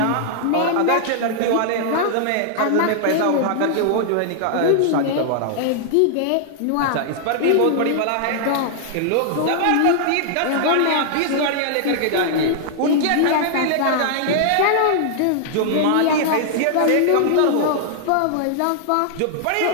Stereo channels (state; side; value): different; both; correlation -0.01